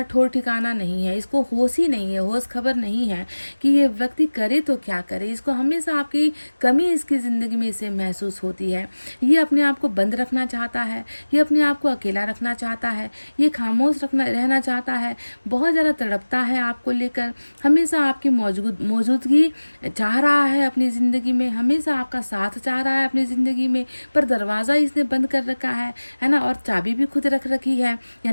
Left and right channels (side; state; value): both; inverted; correlation -1.00